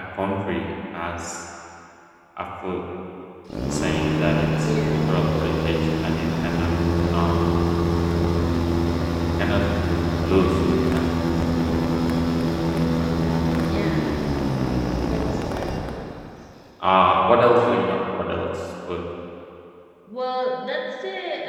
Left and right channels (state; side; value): identical; both; correlation 1.00